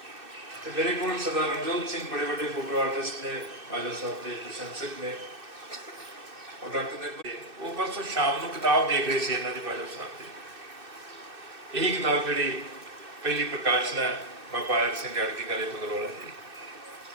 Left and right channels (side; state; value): left; late; 2.6 ms